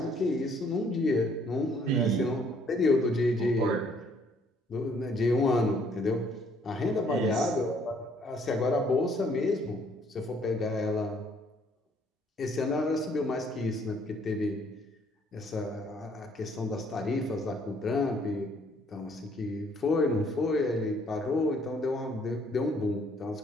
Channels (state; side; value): normal; both; correlation 0.64